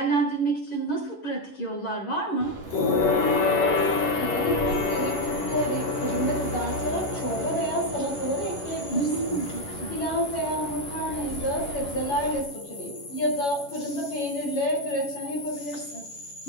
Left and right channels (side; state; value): right; late; 11 ms